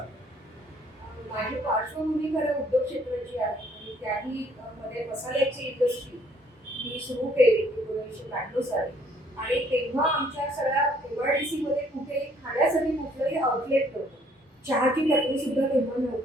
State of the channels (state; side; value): normal; both; correlation 0.63